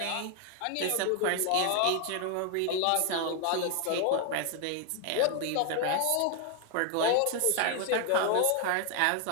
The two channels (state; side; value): different; both; correlation 0.01